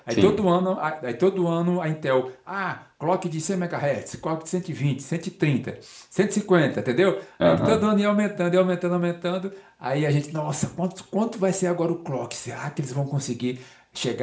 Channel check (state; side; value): identical; both; correlation 1.00